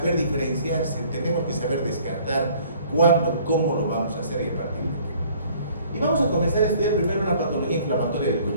diferenciarse, tenemos que saber descartar cuándo, cómo lo vamos a hacer y a partir de qué. Y vamos a comenzar a estudiar primero una patología inflamatoria del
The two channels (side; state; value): both; inverted; correlation -0.56